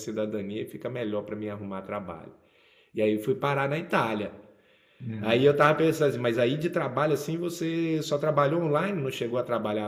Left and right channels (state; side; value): identical; both; correlation 1.00